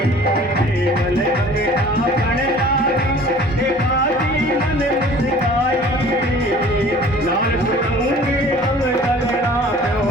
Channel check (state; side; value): normal; both; correlation 0.48